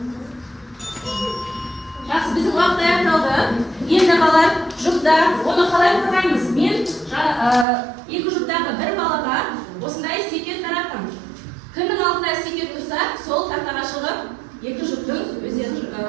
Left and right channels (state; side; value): drops out; left; at 7.7 s